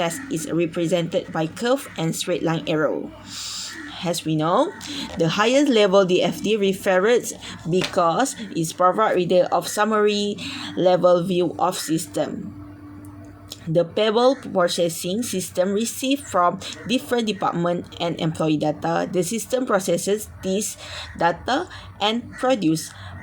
is represented by curve and straight line arrow. As we know, the highest level DFD refers because it provides reader of summary level view of system. The payable processing system receives from different department and employee data. The system processes this data and produce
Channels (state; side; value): identical; both; correlation 1.00